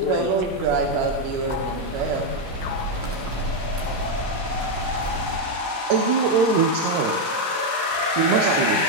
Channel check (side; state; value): left; late; 13 ms